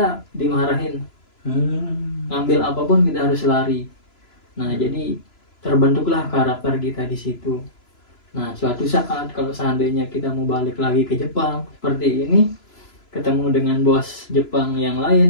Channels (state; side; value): late; right; 3.0 ms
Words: dimarahin, ngambil apapun kita harus lari. Nah jadi terbentuklah karakter kita di situ. Nah suatu saat kalau seandainya kita mau balik lagi ke Jepang seperti ini, ketemu dengan bos Jepang yang